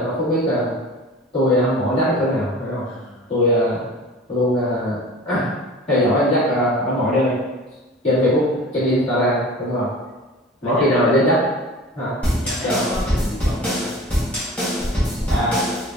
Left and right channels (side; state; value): both; normal; correlation 0.40